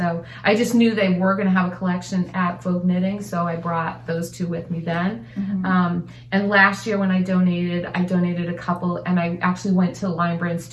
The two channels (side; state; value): both; identical; correlation 1.00